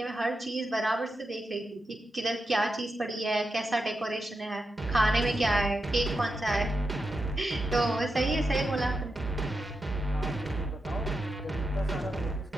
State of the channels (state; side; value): normal; both; correlation 0.88